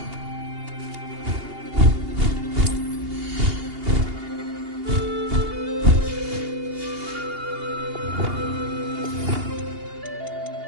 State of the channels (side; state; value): left; late; 2.8 ms